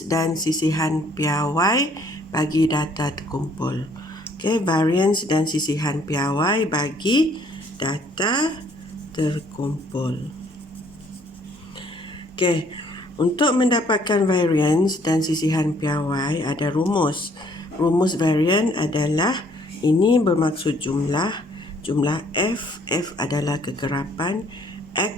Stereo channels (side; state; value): both; normal; correlation 0.62